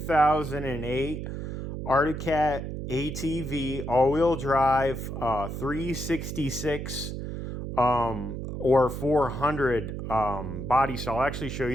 Arctic Cat ATV all-wheel drive 366 or 400 body style. I'll actually show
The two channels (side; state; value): right; noise; hum, 5 dB below the sound